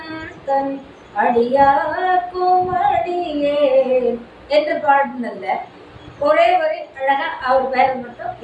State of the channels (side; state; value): both; identical; correlation 1.00